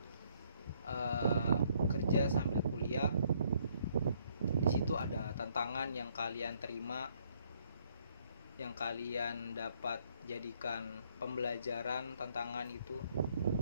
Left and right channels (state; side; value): inverted; both; correlation -0.67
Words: kerja sambil kuliah, di situ ada tantangan yang kalian terima, yang kalian dapat jadikan pembelajaran tantangan itu,